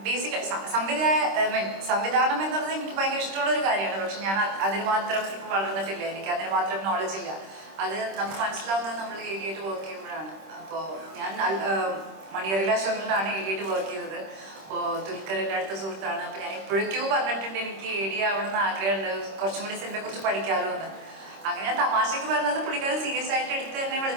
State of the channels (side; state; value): left; late; 26 ms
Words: ബേസിക് സംവിധാനം എന്നുള്ളത് എനിക്ക് ഭയങ്കര ഇഷ്ടമുള്ള ഒരു കാര്യമാണ്. പക്ഷെ ഞാൻ അതിന് മാത്രം ഇപ്പം വളർന്നിട്ടില്ല, എനിക്ക് അതിന് മാത്രം നോളജ് ഇല്ല. അത് നമുക്ക് മനസ്സിലാവുന്നത് നമ്മൾ ഏരിയയായിട്ട് വർക്ക് ചെയ്യുമ്പോഴാണ്. അപ്പോൾ ഞാൻ മണിയറിയിലെ അശോകനിലാണ് ഏരിയയായിട്ട് വർക്ക് ചെയ്തത്. അപ്പോൾ ദുൽഖറിൻ്റെ അടുത്ത സുഹൃത്താണ്. അപ്പോൾ ഞാൻ എപ്പോഴേക്കോ പറഞ്ഞിട്ടുണ്ട് എനിക്ക് ഏരിയ ആവണമെന്ന് ആഗ്രഹമുണ്ട്, കുറച്ചും കൂടി സിനിമയെക്കുറിച്ച് പഠിക്കാമല്ലോ എന്ന്. അങ്ങനെ ഞാൻ തമാശയ്ക്ക് പറഞ്ഞത് പുള്ളിക്കാരൻ സീരിയസ് ആയിട്ട് എടുത്ത് എന്നെ